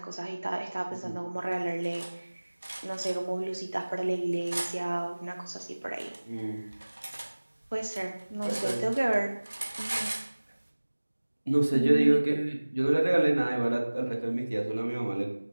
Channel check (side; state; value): both; inverted; correlation -1.00